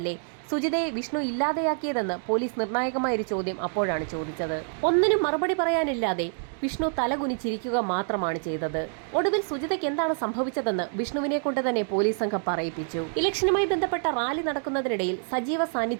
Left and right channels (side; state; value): left; silent; 57 dB below the other